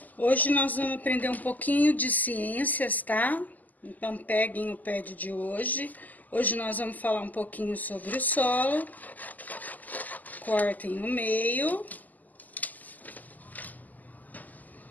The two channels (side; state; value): right; late; 0.081 ms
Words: Hoje nós vamos aprender um pouquinho de ciências, tá? Então, peguem o pad de hoje. Hoje nós vamos falar um pouquinho sobre o solo. Cortem no meio.